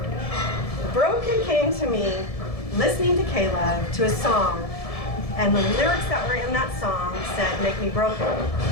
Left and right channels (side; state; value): right; late; 1.7 ms